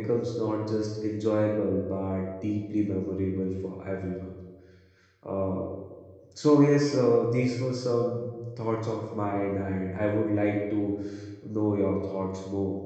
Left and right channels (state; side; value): identical; both; correlation 1.00